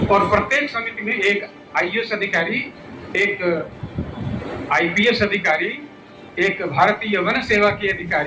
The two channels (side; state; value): both; identical; correlation 1.00